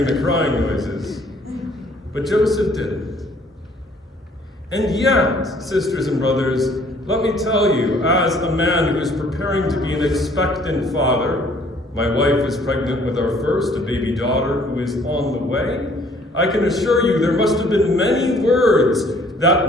the crying noises. But Joseph didn't. And yet, sisters and brothers, let me tell you, as a man who is preparing to be an expectant father, my wife is pregnant with our first, a baby daughter who is on the way, I can assure you there must have been many words,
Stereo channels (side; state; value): both; normal; correlation 0.59